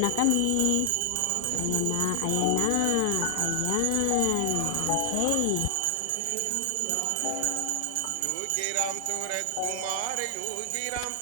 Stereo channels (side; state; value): both; different; correlation 0.00